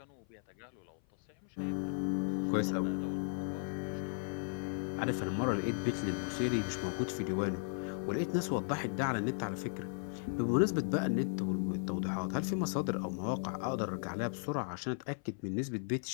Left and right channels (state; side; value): silent; right; 54 dB below the other